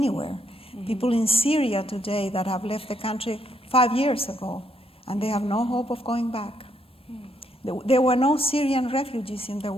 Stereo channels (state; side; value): normal; both; correlation 0.74